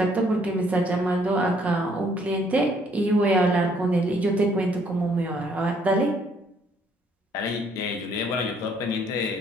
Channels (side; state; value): both; normal; correlation 0.65